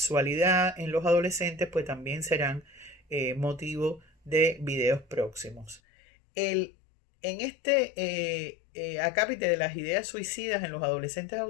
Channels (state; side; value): drops out; right; at 5.8 s